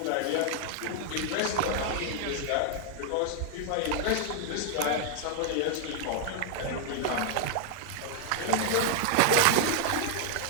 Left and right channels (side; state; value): both; different; correlation 0.00